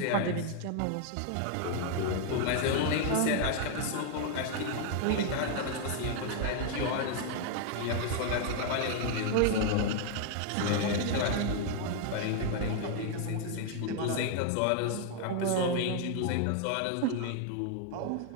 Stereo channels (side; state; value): both; different; correlation 0.00